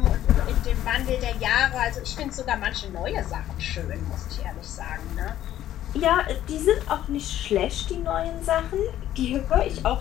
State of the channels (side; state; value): right; quieter; 12.4 dB